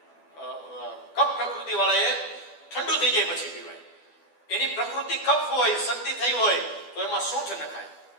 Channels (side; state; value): right; late; 12 ms